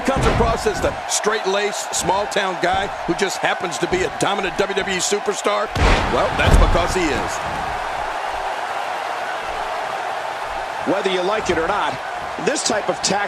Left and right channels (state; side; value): identical; both; correlation 1.00